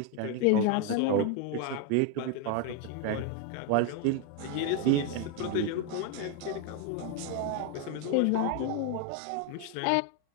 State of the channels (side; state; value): both; different; correlation 0.01